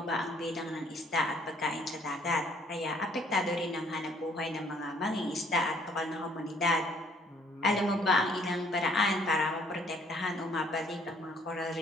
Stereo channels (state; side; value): normal; both; correlation 0.62